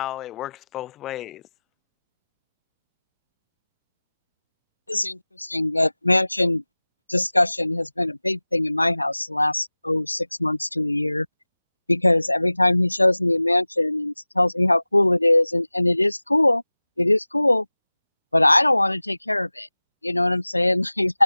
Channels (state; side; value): inverted; both; correlation -0.99